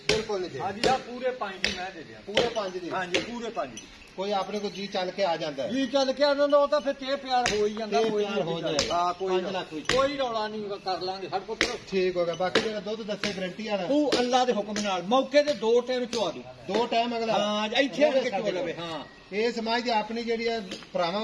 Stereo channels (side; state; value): both; identical; correlation 1.00